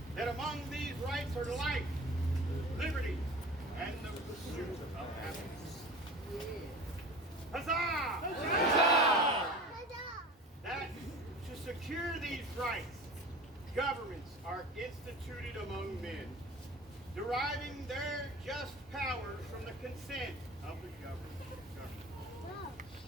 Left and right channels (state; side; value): normal; both; correlation 0.37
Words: that among these rights are life, liberty, and the pursuit of happiness. Huzzah! Huzzah! That to secure these rights, governments are instituted among men, deriving their just powers from the consent of the government.